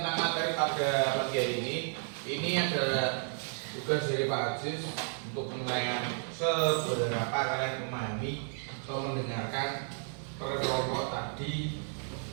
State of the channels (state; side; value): silent; left; 56 dB below the other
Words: materi pada pagi hari ini adalah tugas dari Pak Aziz untuk menilai seberapa kalian memahami atau mendengarkan per kelompok tadi